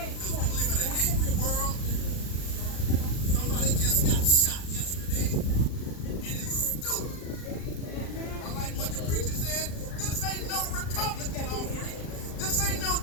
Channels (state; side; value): late; right; 39 ms